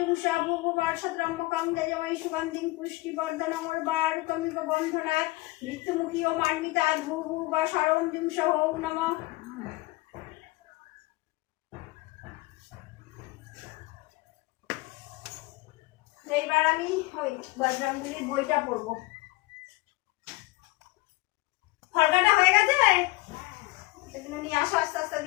ভুভুবার সদ্রম্মকং যজমৈ সুগন্ধিং পুষ্টিবর্ধনং উর্বারুকমিব বন্ধনাৎ মৃত্যুমুখী ও মার্মিতাৎ ভুভুবা সরং জুংসা ওম নমঃ। এইবার আমি ওই বজরঙ্গবলীর বইটা পড়বো। ফলকাটা হয়ে গেছে, সেগুলো নিয়ে আসো, আস্তে আস্তে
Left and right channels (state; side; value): quieter; right; 21.6 dB